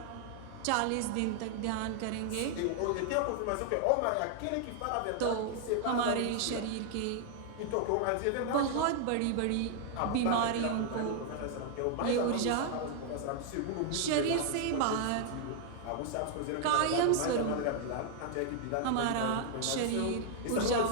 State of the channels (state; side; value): different; both; correlation 0.00